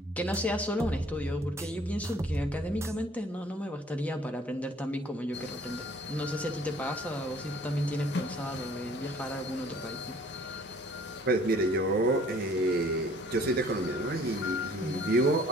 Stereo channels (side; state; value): both; normal; correlation 0.56